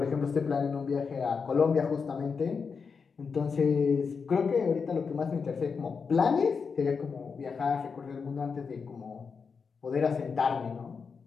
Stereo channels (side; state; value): right; quieter; 5.5 dB